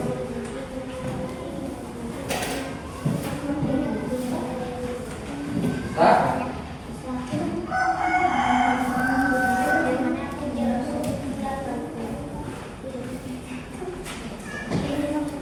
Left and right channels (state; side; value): identical; both; correlation 1.00